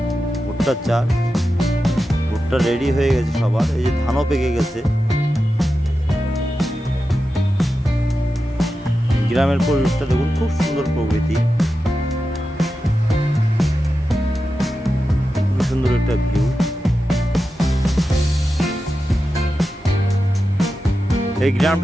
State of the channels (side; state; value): both; normal; correlation 0.91